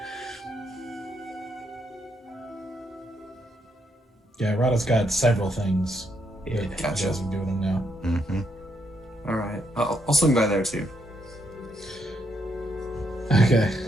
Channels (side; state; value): both; normal; correlation 0.76